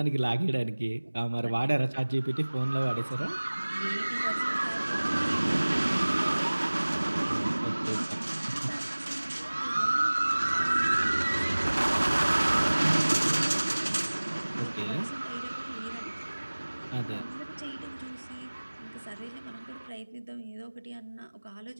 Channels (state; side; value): inverted; both; correlation -1.00